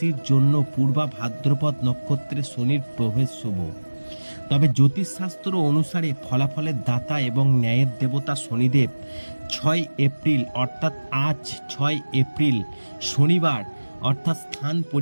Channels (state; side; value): inverted; both; correlation -1.00